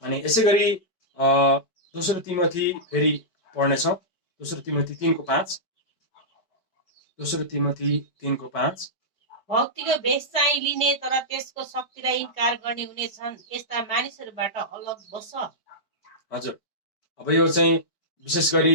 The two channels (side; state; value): right; late; 5.2 ms